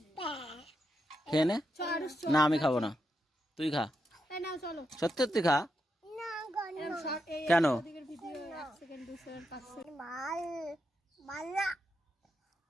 খেয়ে নে। না আমি খাবো না, তুই খা। এই নাও চলো। সত্যি সত্যি খা। এরকম শর্ট এই কেন? ওদিকের ভিডিও 1 সেকেন্ড 2 সেকেন্ড 5 সেকেন্ড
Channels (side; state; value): both; normal; correlation 0.84